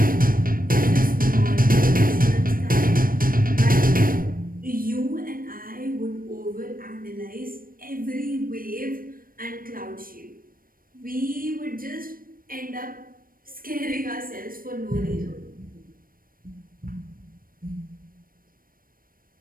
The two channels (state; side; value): late; left; 0.41 ms